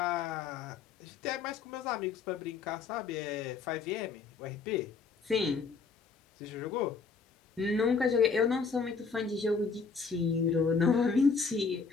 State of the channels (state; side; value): quieter; right; 5.1 dB